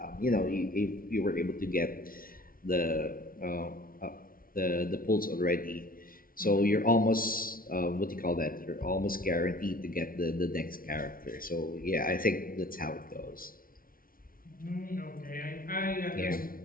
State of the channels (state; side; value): late; right; 0.42 ms